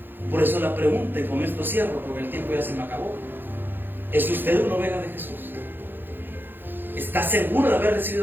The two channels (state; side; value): late; left; 0.097 ms